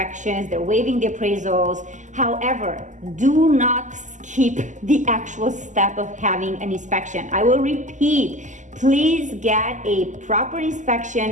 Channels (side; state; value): left; late; 0.36 ms